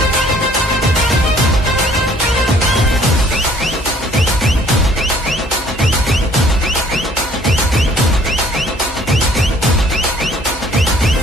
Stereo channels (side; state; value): both; normal; correlation 0.58